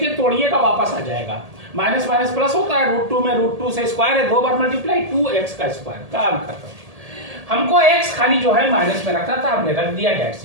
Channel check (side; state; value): left; late; 1.8 ms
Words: तोड़िएगा वापस आ जाएगा, माइनस माइनस प्लस होता है, √2 में √2 से स्क्वायर है, 2 बार मल्टीप्लाई, 2x का स्क्वायर, काम खत्म। हमको x खाली जो है माइनस में रखना था, हमने रख दिया, डेट